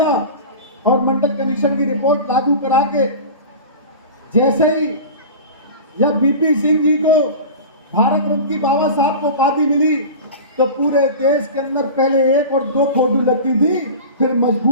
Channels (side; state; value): both; inverted; correlation -0.33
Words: और मंडल कमीशन की रिपोर्ट लागू करा के जैसे ही जब बीपी सिंह जी को भारत रत्न की बाबा साहब को उपाधि मिली तो पूरे देश के अंदर पहले 1 और 2 फोटो लगती थी, फिर